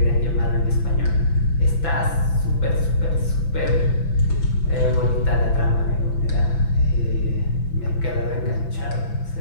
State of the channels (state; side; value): late; right; 5.9 ms